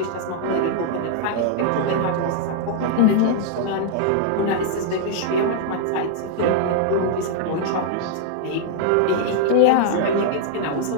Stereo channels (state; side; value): different; both; correlation -0.01